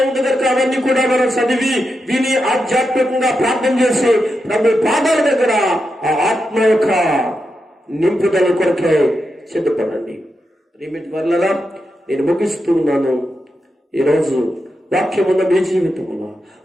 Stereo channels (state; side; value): normal; both; correlation 0.87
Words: ఉంది కనుక అవన్నీ కూడా మనం చదివి విని ఆధ్యాత్మికంగా ప్రార్థన చేసి ప్రభు పాదాల దగ్గర ఆ ఆత్మ యొక్క నింపుదల కొరకే సిద్ధపడండి. రిమిట్ వల్ల నేను ముగిస్తున్నాను. ఈరోజు వాక్యం ఉన్న మీ జీవితంలో,